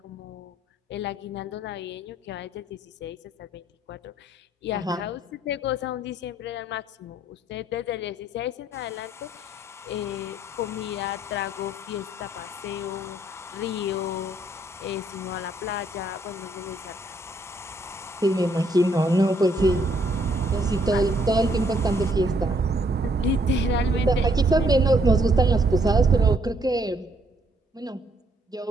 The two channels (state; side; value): normal; both; correlation 0.69